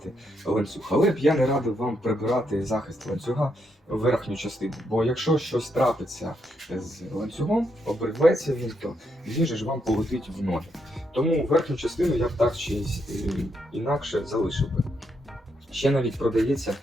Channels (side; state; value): both; normal; correlation 0.79